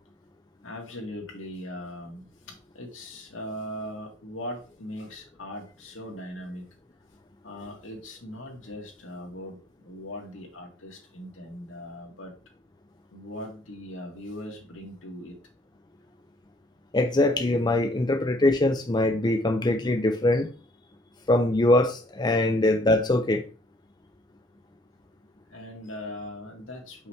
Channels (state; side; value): normal; both; correlation 0.62